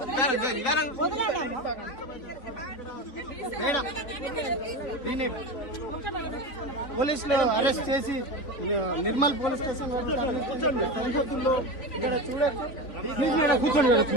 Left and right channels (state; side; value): late; right; 3.9 ms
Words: పోలీసులు అరెస్ట్ చేసి Nirmal police station please madam కూర్చోండి madam